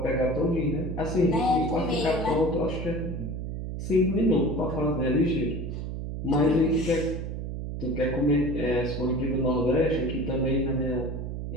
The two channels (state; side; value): noise; right; hum, 5 dB below the sound